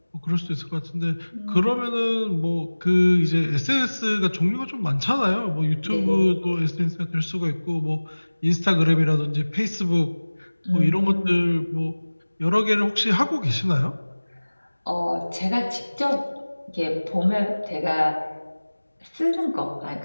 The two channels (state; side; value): inverted; both; correlation -1.00